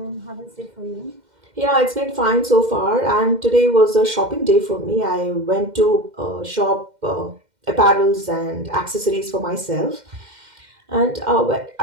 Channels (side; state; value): left; late; 2.1 ms